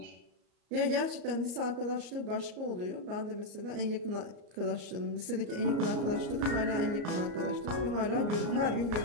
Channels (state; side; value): late; left; 34 ms